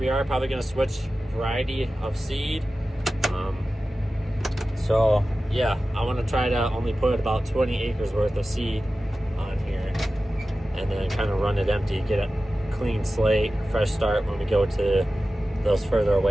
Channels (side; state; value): both; normal; correlation 0.95